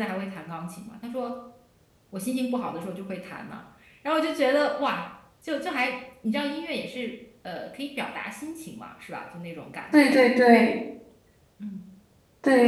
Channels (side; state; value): both; identical; correlation 1.00